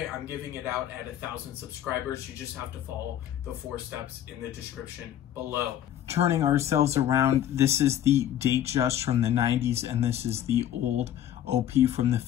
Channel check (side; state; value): right; quieter; 11.1 dB